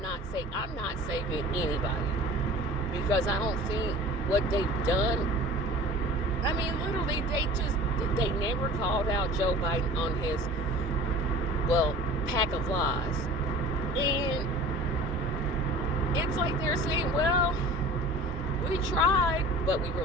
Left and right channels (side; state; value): both; normal; correlation 0.42